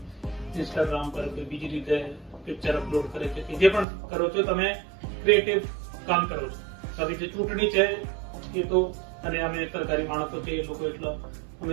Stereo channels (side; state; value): left; drops out; at 3.9 s